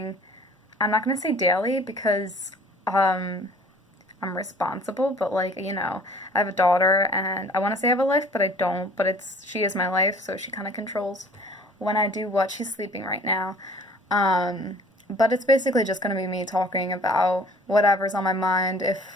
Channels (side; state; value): both; normal; correlation 0.50